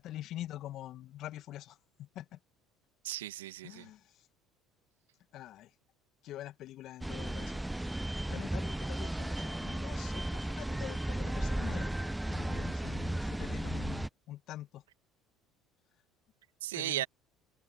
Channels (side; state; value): both; normal; correlation 0.78